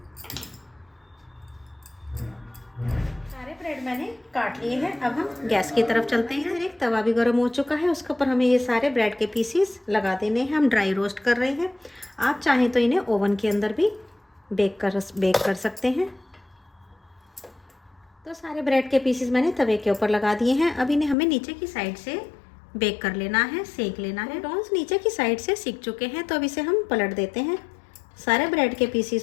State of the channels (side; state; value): right; drops out; at 21.2 s